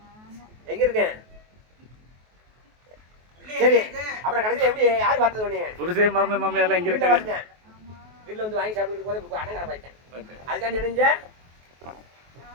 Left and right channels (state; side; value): late; left; 23 ms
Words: எங்க இருக்கேன்? சரி, அப்புறம் கடைசியில் எப்படி யார் பார்த்தது உடனே? புருஷே மாமியார்லாம் எங்க வீட்டில் இருக்காங்க? பார்த்தேன். வீட்டில் வந்து வாங்கி சாப்பிட்டு போது அண்ணன் கடை பார்த்தேன். அதுக்காண்டி நினைஞ்ச